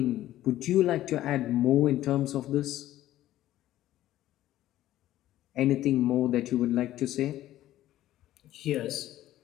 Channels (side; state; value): right; quieter; 14.0 dB